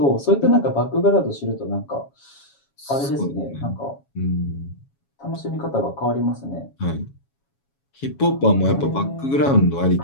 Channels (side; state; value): right; late; 7.2 ms